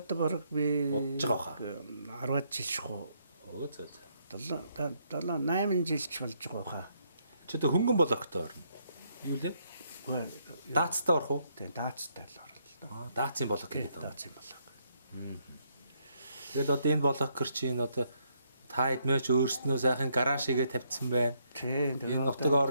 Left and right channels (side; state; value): both; inverted; correlation -0.74